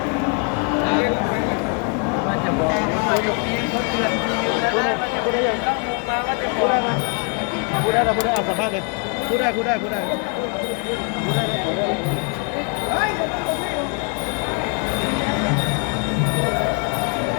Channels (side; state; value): right; quieter; 36.5 dB